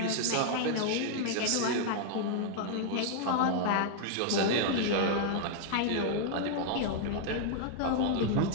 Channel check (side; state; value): both; different; correlation 0.00